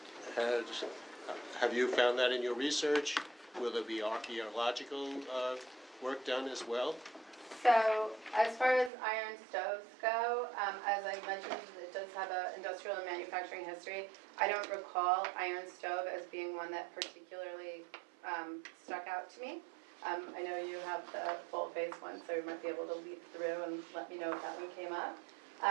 Have you found that in your research? Will there be archaeological work done as well? So, as far as iron stoves go, as I mentioned, the does have an industrial and manufacturing history. I don't recall iron stove as being one that particularly stuck out to me. I know you have the full face one, so you might be able to lead through and let me know if that one came up.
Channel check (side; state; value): left; drops out; at 8.9 s